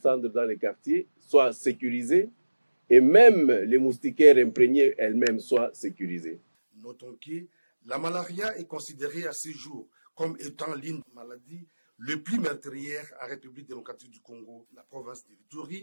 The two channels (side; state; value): both; inverted; correlation -1.00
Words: dans les quartiers soit sécurisé et même les moustiquaires imprégnés elles-mêmes soient sécurisées. Notons que la malaria est considérée à ce jour comme étant l'une des maladies les plus meurtrières en République démocratique du Congo. La province de